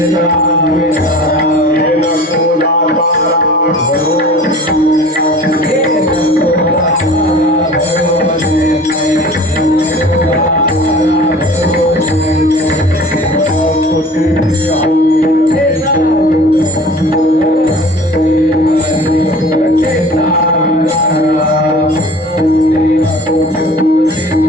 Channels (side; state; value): both; normal; correlation 0.43